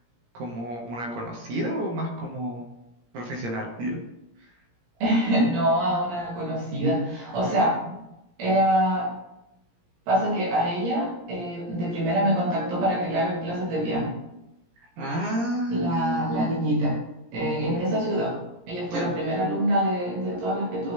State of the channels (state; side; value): late; left; 17 ms